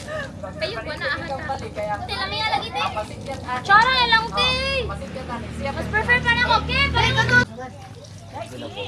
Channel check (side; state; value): both; identical; correlation 1.00